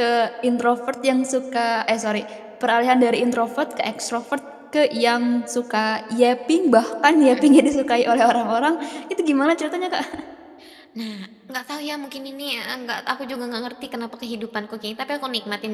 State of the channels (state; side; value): identical; both; correlation 1.00